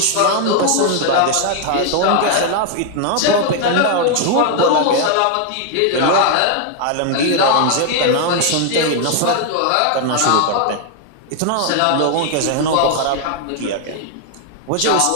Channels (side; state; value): both; different; correlation 0.00